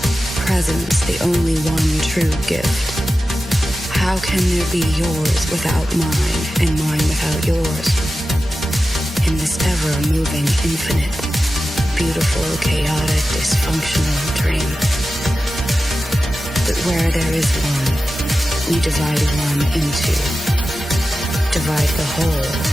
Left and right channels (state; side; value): normal; both; correlation 0.93